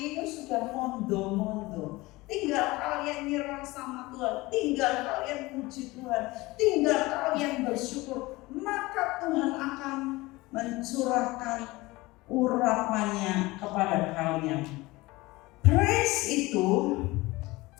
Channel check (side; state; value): right; quieter; 21.0 dB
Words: itu sudah mondo-mondo. Tinggal kalian nyerah sama Tuhan, tinggal kalian puji Tuhan, tinggal kalian bersyukur, maka Tuhan akan mencurahkan urapannya kepada kalian. Praise itu